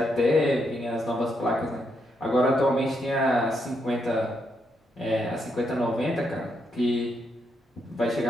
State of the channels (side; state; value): both; normal; correlation 0.79